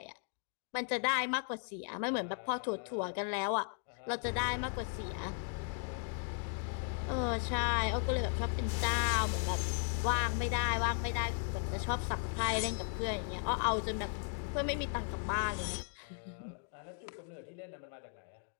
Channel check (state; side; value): silent; right; 53 dB below the other